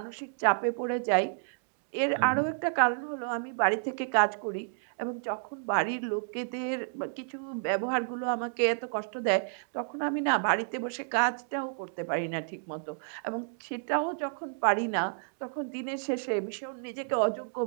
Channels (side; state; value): left; silent; digital silence